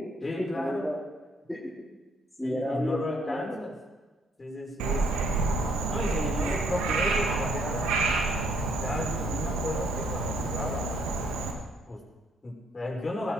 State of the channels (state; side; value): normal; both; correlation 0.67